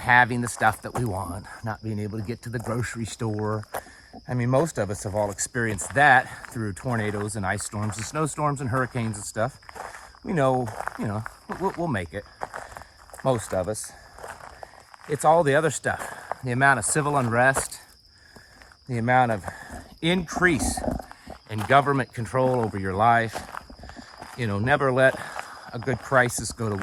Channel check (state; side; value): identical; both; correlation 1.00